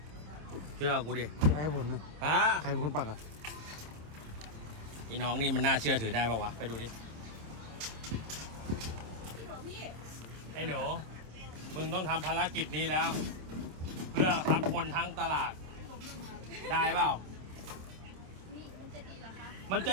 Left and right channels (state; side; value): late; left; 26 ms